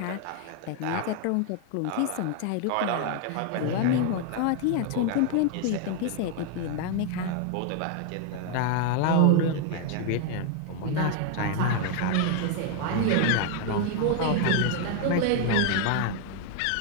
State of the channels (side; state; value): both; different; correlation 0.00